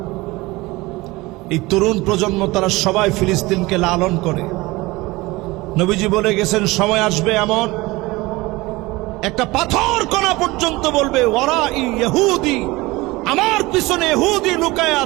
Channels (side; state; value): left; quieter; 21.3 dB